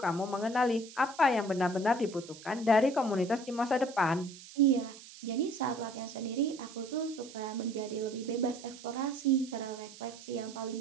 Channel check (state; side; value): noise; right; hiss, 17 dB below the sound